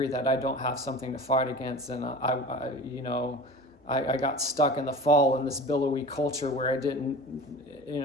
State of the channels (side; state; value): both; normal; correlation 0.36